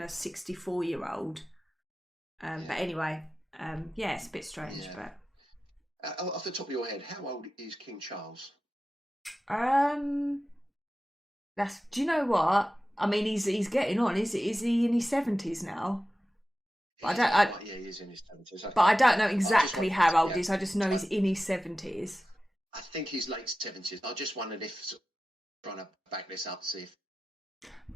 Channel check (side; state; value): both; normal; correlation 0.94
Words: a 64-year-old. But anyway, yeah, it's a bit strange. Yeah. But Off the top of your head, how old is King Charles? do you know what? I mean, he's getting on. Is he in his 70s now? But He is in his 70s. But I don't know exactly how old yeah, he is. I just know he's in his 70s. I think he's late 70s. I just wondered if trying to back this up, see if.